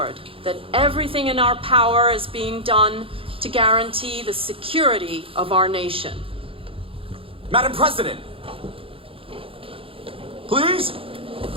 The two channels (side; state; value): left; late; 0.27 ms